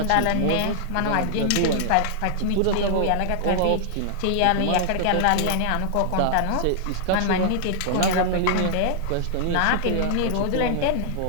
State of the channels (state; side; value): different; both; correlation -0.01